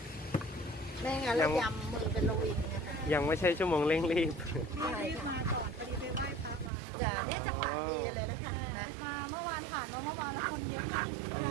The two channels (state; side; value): drops out; left; at 6.7 s